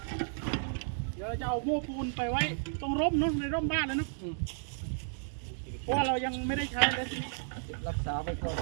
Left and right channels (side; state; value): left; silent; digital silence